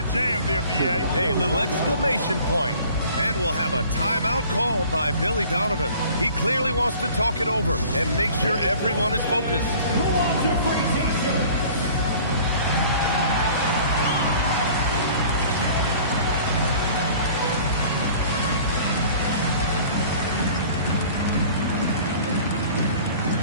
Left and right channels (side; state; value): both; inverted; correlation -0.48